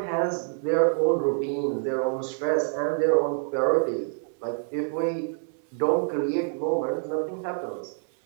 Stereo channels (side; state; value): left; silent; digital silence